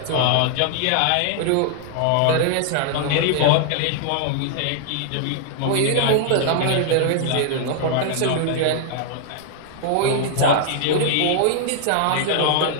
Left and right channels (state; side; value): different; both; correlation 0.00